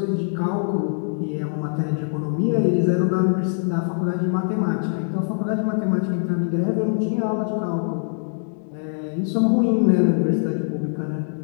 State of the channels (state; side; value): silent; right; digital silence